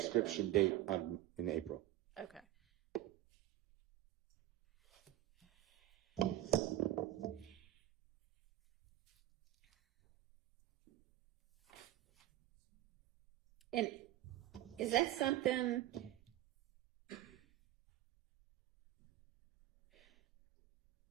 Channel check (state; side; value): quieter; left; 14.5 dB